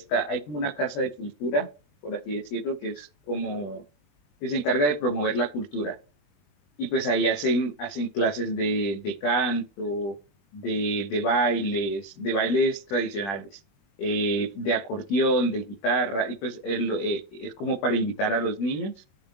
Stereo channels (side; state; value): right; late; 20 ms